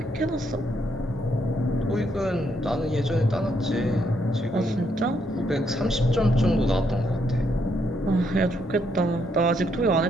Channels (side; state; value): both; normal; correlation 0.75